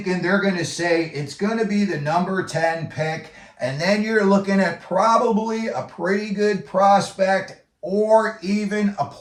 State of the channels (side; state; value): both; identical; correlation 1.00